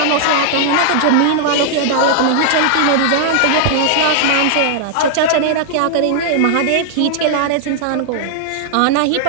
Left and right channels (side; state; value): both; different; correlation -0.01